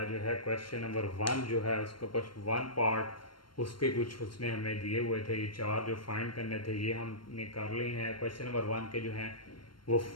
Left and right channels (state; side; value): late; right; 0.72 ms